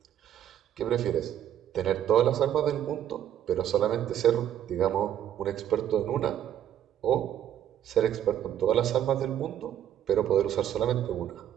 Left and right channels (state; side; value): quieter; left; 10.6 dB